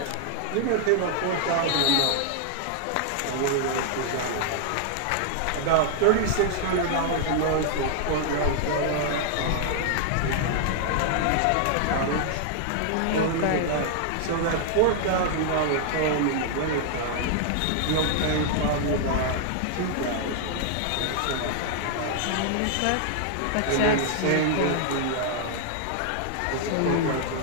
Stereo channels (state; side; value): different; both; correlation 0.00